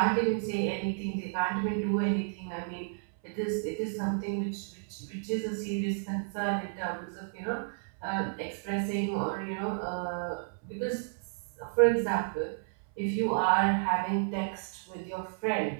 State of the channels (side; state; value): left; silent; 57 dB below the other